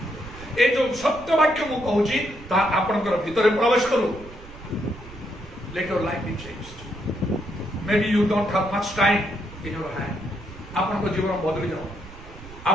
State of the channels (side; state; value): right; noise; rumble, 17 dB below the sound